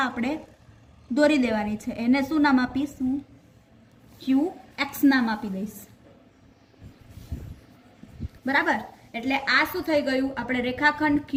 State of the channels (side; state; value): both; identical; correlation 1.00